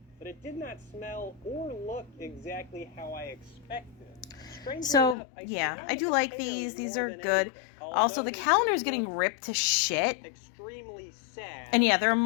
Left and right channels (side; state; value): right; drops out; at 5.2 s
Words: But it did not smell or look exactly how I expected. So, yeah, I do like these. These are good. Also, the calendar is getting ripped to shit. And yeah, there are